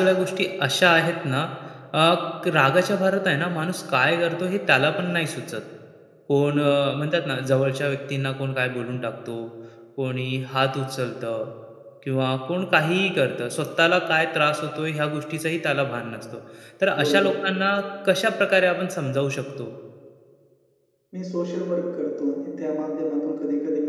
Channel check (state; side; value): identical; both; correlation 1.00